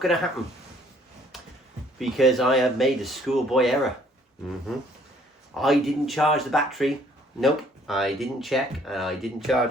to happen because I have made a schoolboy error. I didn't charge the battery. Nope, I didn't check and I didn't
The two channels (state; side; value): normal; both; correlation 0.61